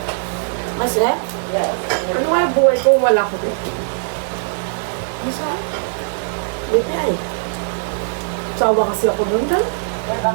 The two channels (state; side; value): silent; left; 57 dB below the other